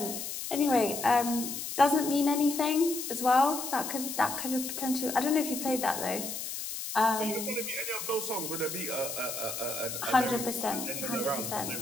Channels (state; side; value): noise; left; hiss, 6 dB below the sound